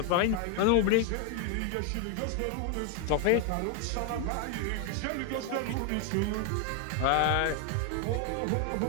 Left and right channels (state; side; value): different; both; correlation 0.01